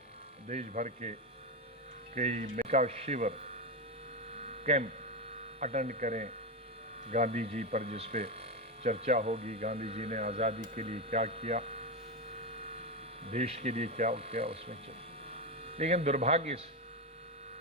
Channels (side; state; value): both; normal; correlation 0.12